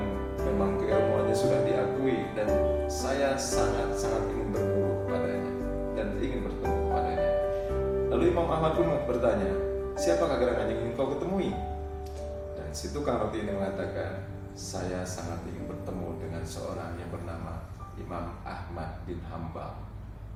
memang keilmuannya sudah diakui, dan saya sangat-sangat ingin berguru kepadanya dan ingin bertemu kepadanya." Lalu Imam Ahmad pun bertanya, "Siapakah gerangan yang ingin kau ketemui?" Dan si tukang roti ini mengatakan, "Saya sangat ingin bertemu dengan seorang yang bernama Imam Ahmad bin Hambal."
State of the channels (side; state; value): both; identical; correlation 1.00